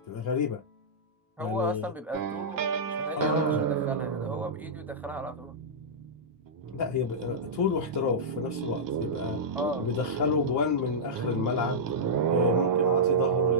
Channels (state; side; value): normal; both; correlation -0.12